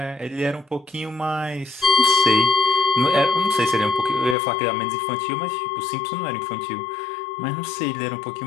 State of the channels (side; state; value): right; drops out; at 4.4 s